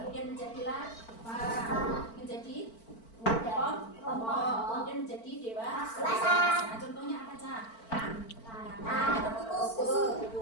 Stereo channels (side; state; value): right; late; 4.5 ms